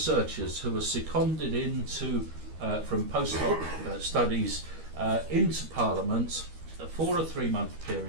who are seconded into from postdoc studies into Parliament for a 3-month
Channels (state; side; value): late; left; 13 ms